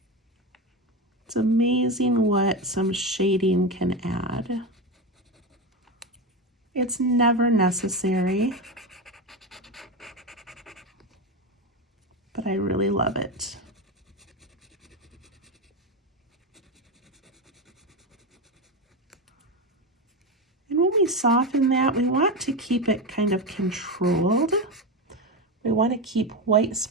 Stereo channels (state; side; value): normal; both; correlation 0.16